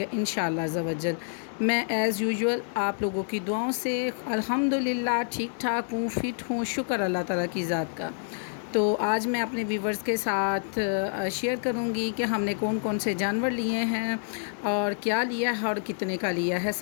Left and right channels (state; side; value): silent; right; digital silence